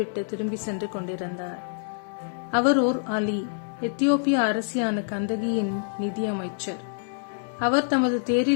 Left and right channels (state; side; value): silent; right; 61 dB below the other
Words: திரும்பி சென்று கொண்டிருந்தார். அவர் ஓர் அலி, எத்தியோப்பிய அரசியான கந்தகியின் நிதியமைச்சர். அவர் தமது